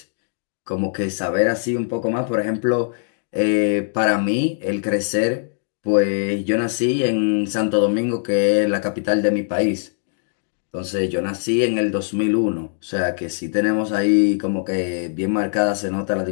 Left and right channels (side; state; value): right; silent; digital silence